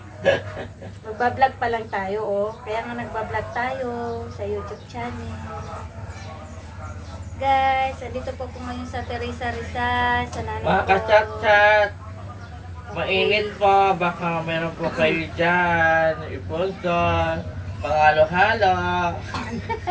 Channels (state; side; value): identical; both; correlation 1.00